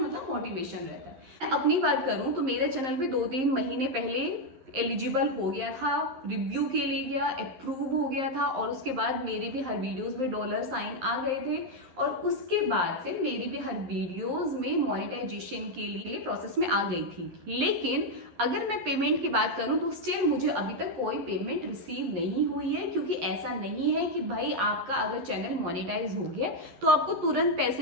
मोटिवेशन रहता है। मैं अपनी बात करूँ तो मेरे चैनल पे 2-3 महीने पहले एलिजिबल हो गया था, रिव्यू के लिए गया, अप्रूव हो गया था, और उसके बाद मेरी भी हर वीडियोस में डॉलर साइन आ गए थे, और उसके बाद से मेरी भी हर वीडियोस में मोनेटाइजेशन के लिए प्रोसेस में आ गई थी। लेकिन अगर मैं पेमेंट की बात करूं तो स्टिल मुझे अभी तक कोई पेमेंट रिसीव नहीं हुई है, क्योंकि ऐसा नहीं है कि भाई आपका अगर चैनल मोनेटाइज हो गया तो आपको तुरंत पैसे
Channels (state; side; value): late; left; 11 ms